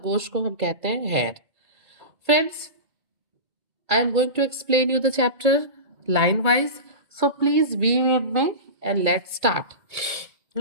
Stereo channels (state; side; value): late; left; 2.3 ms